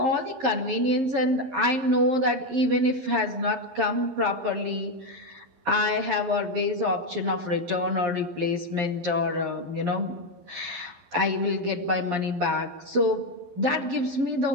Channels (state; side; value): late; left; 11 ms